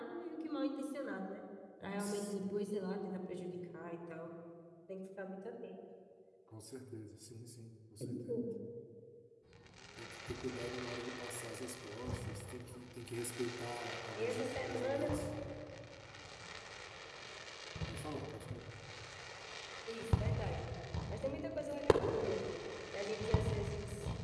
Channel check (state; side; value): identical; both; correlation 1.00